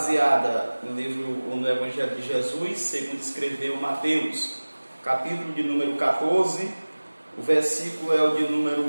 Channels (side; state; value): both; inverted; correlation -1.00